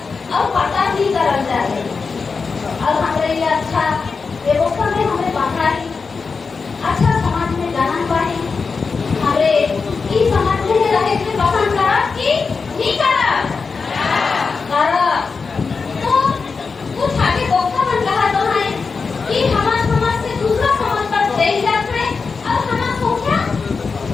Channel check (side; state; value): right; quieter; 4.9 dB